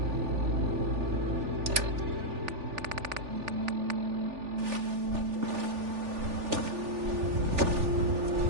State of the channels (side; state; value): left; late; 3.4 ms